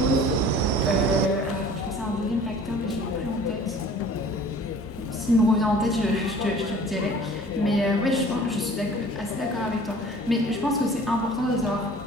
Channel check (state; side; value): normal; both; correlation 0.48